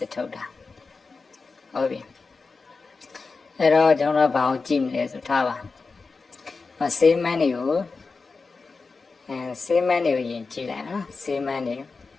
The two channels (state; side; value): quieter; right; 4.3 dB